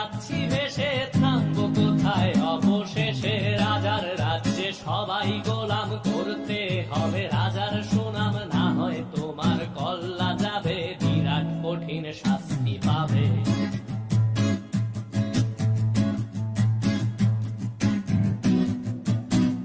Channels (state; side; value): identical; both; correlation 1.00